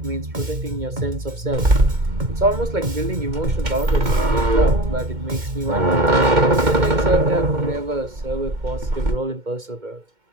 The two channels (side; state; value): left; late; 2.2 ms